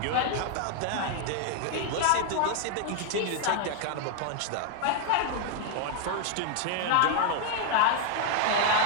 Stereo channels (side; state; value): both; different; correlation 0.00